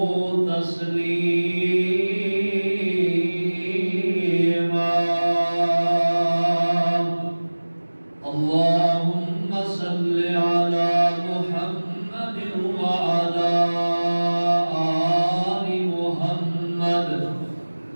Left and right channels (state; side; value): inverted; both; correlation -1.00